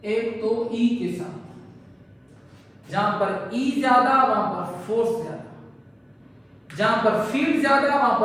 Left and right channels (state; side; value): identical; both; correlation 1.00